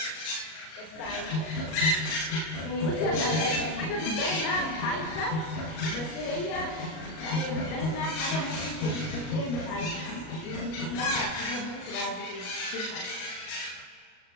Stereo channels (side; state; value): right; late; 38 ms